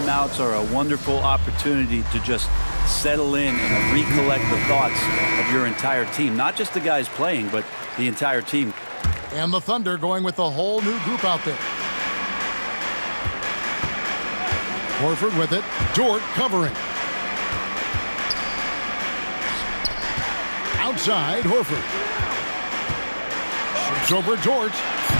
are a wonderful opportunity to just settle in and recollect the thoughts of your entire team. Not just the guys playing, but the entire team. And the Thunder going with a whole new group out there. Horford with it. Dort covering. Outside, Horford. Shoots over Dort.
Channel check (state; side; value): inverted; both; correlation -1.00